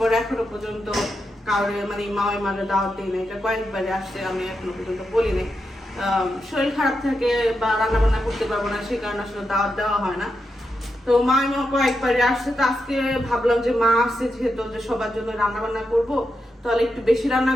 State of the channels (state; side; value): normal; both; correlation 0.86